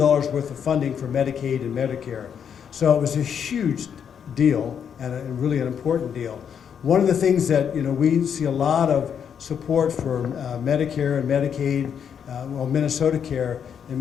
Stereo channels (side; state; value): right; quieter; 7.9 dB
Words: of funding for Medicaid and Medicare. So it was a huge deal and really an important deal. One of the things that we see a lot of support for Medicare and Medicaid, Minnesota Care in